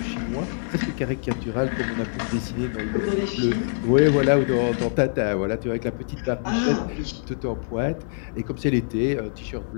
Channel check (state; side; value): silent; right; digital silence